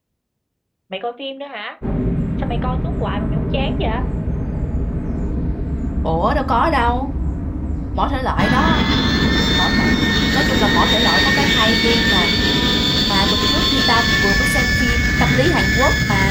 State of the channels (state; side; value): identical; both; correlation 1.00